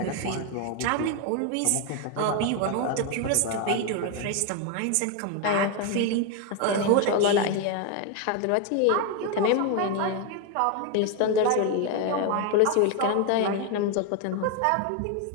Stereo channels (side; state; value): both; different; correlation 0.01